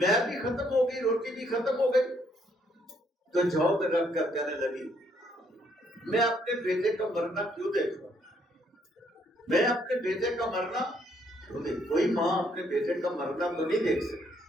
بھی ختم ہو گئی، روٹی بھی ختم ہو گئی، تو جھونک رکھ کر کہنے لگی میں اپنے بیٹے کا مرنا کیوں دیکھوں، میں اپنے بیٹے کا مرنا کیوں دیکھوں؟ کوئی ماں اپنے بیٹے کا مرنا تو نہیں دیکھ سکتی۔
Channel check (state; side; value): normal; both; correlation 0.70